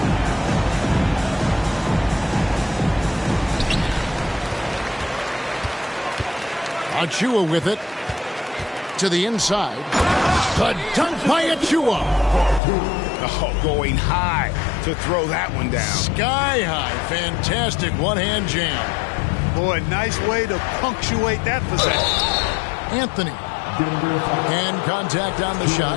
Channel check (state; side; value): drops out; right; at 12.6 s